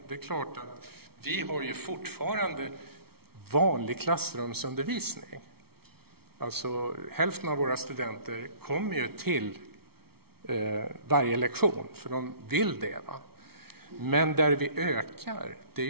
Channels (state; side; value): late; left; 0.95 ms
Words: Det är klart att vi har ju fortfarande vanlig klassrumsundervisning. Alltså hälften av våra studenter kommer ju till varje lektion, för de vill det. Va? Men där vi ökar, det är